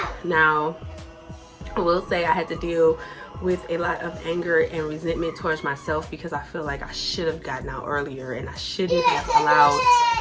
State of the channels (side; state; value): both; identical; correlation 1.00